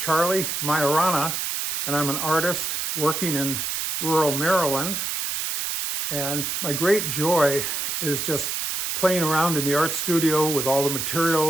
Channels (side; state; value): right; noise; hiss, 2 dB below the sound